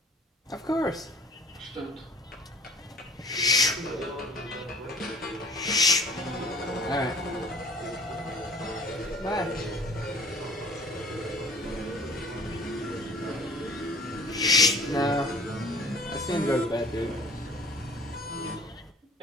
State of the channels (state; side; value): normal; both; correlation 0.50